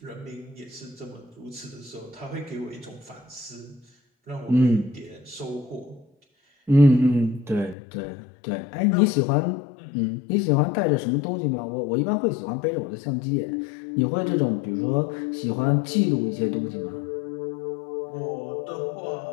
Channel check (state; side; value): drops out; right; at 7.8 s